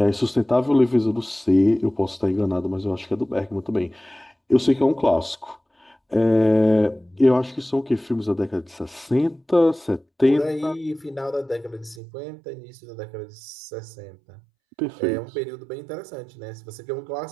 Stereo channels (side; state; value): left; drops out; at 12.0 s